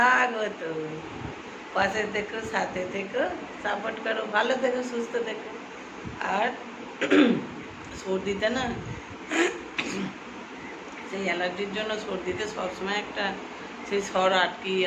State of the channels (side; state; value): both; identical; correlation 1.00